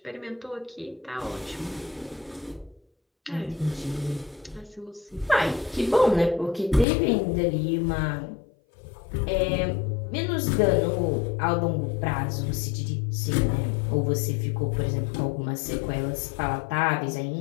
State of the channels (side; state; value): right; drops out; at 6.9 s